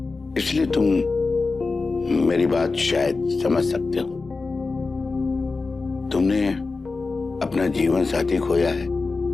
इसलिए तुम मेरी बात शायद समझ सकते हो। तुमने अपना जीवन साथी खोया है,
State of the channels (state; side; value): quieter; right; 4.0 dB